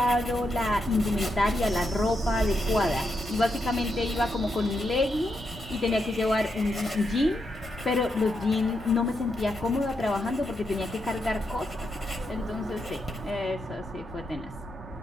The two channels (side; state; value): left; noise; rumble, 19 dB below the sound